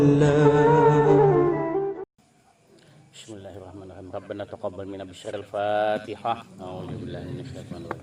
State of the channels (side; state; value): both; identical; correlation 1.00